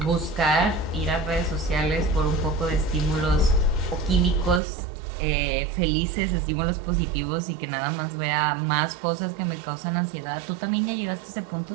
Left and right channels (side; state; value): left; drops out; at 4.6 s